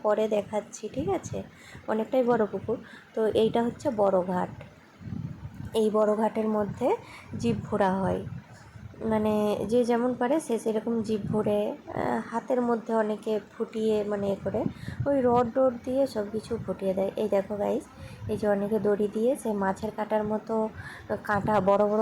পরে দেখাচ্ছি, ঠিক আছে? অনেকটাই বড় পুকুর। তো এইটা হচ্ছে বড় ঘাট। এই বড় ঘাটের মধ্যে জীব ঘোরা হয়, মানে যে যেমন পারে সে সেরকম জীব ভরে হাতের মধ্যে অনেকে ফুটিয়ে, মানে এ করে ওই রড দিয়ে সব কিছু ফুটিয়ে দেয়। এই দেখো গাইস, এই যে অনেকে দড়ি দিয়ে সে মাছের কাঁটার মতো কাঁটা, বড়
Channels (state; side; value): identical; both; correlation 1.00